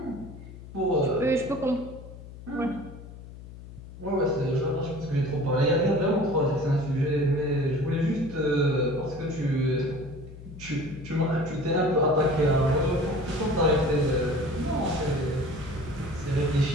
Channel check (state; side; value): noise; left; hum, 15 dB below the sound